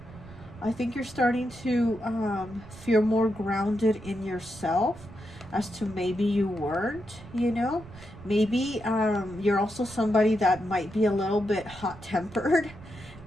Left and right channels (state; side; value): noise; right; rumble, 18 dB below the sound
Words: I think you're starting to feel more grounded in yourself, as to maybe you weren't, you know. Maybe you're also somebody that might be a little bit hot-tempered.